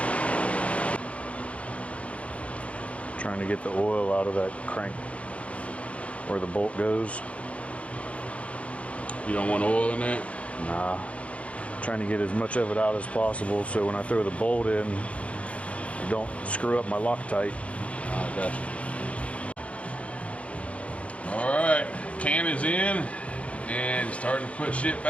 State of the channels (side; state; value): right; late; 0.063 ms